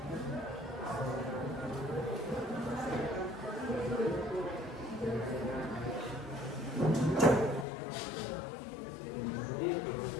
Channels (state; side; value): drops out; right; at 7.7 s